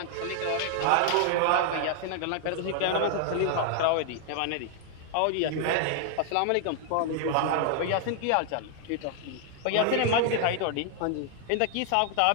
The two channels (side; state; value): both; different; correlation 0.00